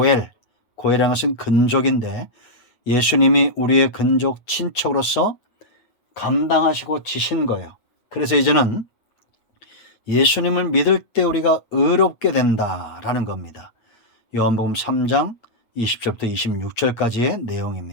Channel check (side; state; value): right; late; 8.6 ms